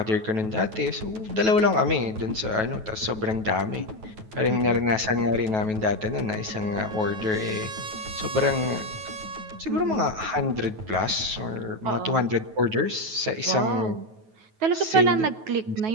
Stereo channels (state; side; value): late; left; 9.3 ms